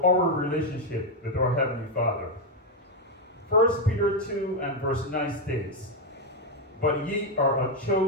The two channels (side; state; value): both; normal; correlation 0.05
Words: with our Heavenly Father. 1 Peter 2 and verse 9 states, "But ye are a